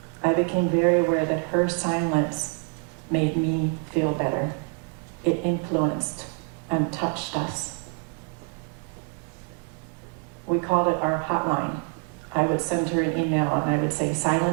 I became very aware that her silence made me feel better. It influenced and touched us. We called it our hotline. I would send her an email and I would say,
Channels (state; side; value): quieter; left; 34.9 dB